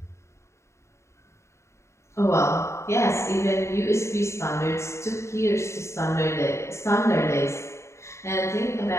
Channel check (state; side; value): late; right; 0.14 ms